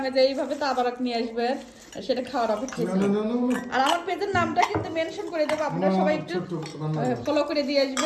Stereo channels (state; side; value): identical; both; correlation 1.00